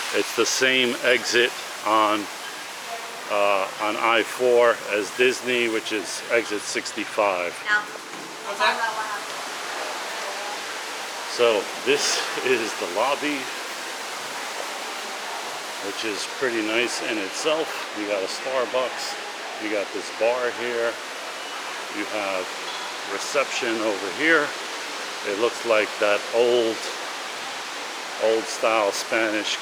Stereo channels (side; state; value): both; identical; correlation 1.00